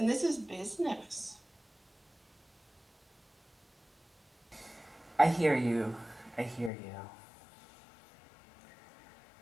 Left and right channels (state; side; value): drops out; right; at 6.7 s